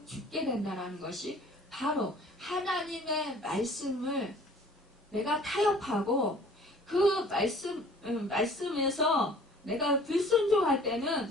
죽게 된다는 것이 바로 하나님의 말씀을 내가 타협하고 그 말씀에서 내가 불순종할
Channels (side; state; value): both; normal; correlation 0.51